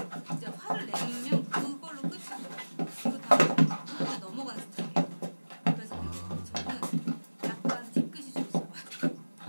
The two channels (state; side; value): inverted; both; correlation -1.00